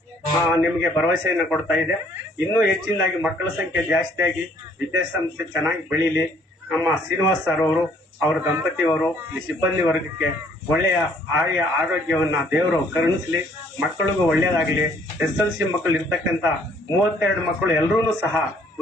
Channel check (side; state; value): both; normal; correlation 0.62